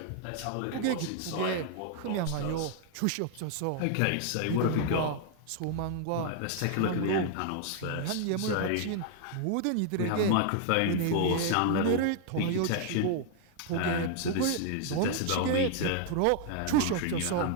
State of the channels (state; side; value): different; both; correlation 0.00